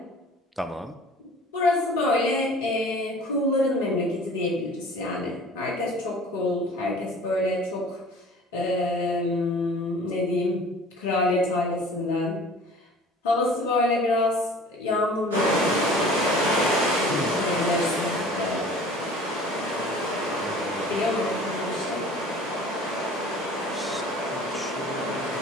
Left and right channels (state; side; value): normal; both; correlation 0.46